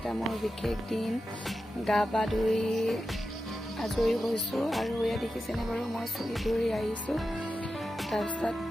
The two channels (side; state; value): both; normal; correlation 0.91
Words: মোৰ বিশেষ দিন গা পা ধুই আজৰি হৈছো আৰু এয়া দেখিছেনে বাৰু মই চুলি ধৰি আহিছো তাৰপিছত